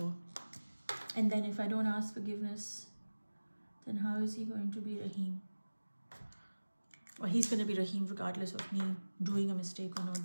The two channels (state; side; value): inverted; both; correlation -1.00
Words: And then if I don't ask forgiveness, then how is he going to be Rahim? Well, he's going to be Rahim regardless of me doing a mistake or not